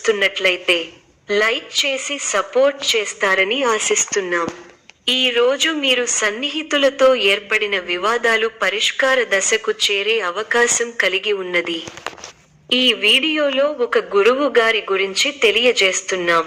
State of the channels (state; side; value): identical; both; correlation 1.00